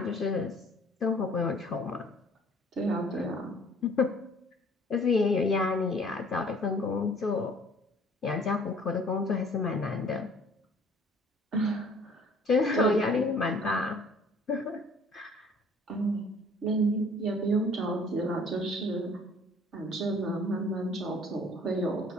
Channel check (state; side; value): normal; both; correlation 0.54